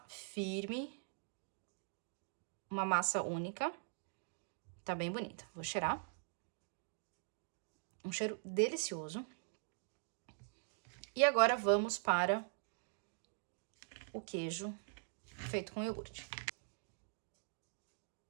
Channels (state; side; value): silent; left; digital silence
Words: firme. Uma massa única. Tá bem bonita. Vou cheirar. Um cheiro delicioso. E agora vamos para o queijo feito com iogurte.